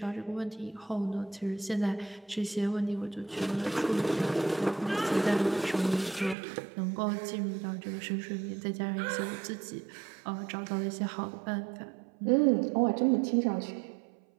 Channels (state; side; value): drops out; left; at 6.4 s